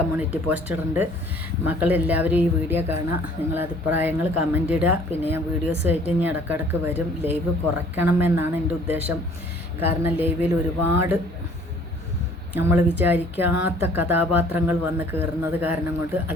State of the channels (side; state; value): both; normal; correlation 0.55